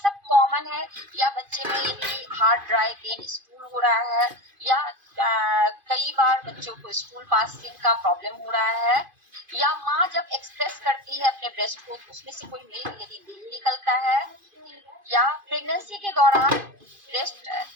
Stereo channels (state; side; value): late; left; 2.5 ms